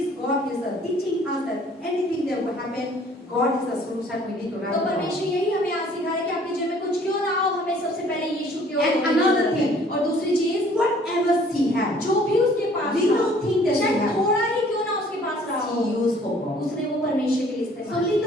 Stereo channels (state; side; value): normal; both; correlation 0.56